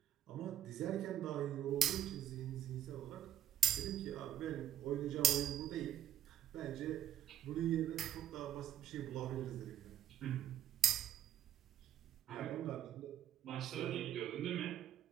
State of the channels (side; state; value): left; quieter; 10.5 dB